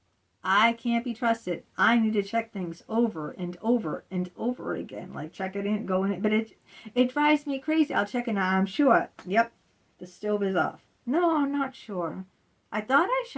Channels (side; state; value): both; identical; correlation 1.00